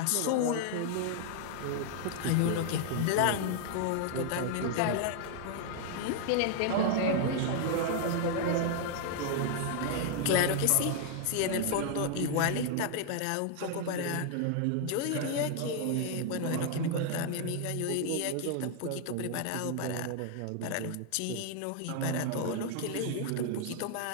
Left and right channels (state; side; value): different; both; correlation 0.00